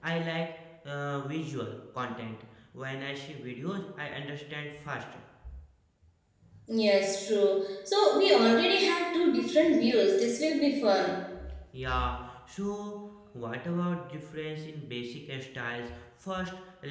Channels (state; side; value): identical; both; correlation 1.00